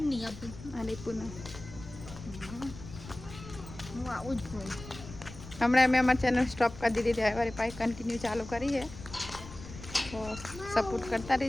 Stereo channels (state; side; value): noise; left; rumble, 14 dB below the sound